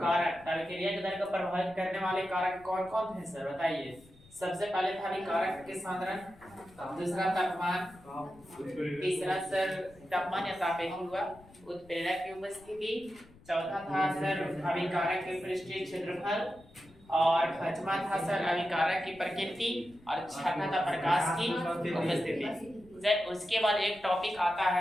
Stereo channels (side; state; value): left; noise; rumble, 25 dB below the sound